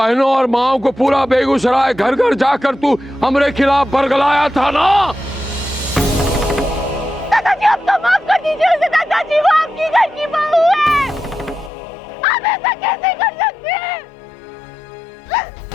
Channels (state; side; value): drops out; right; at 11.7 s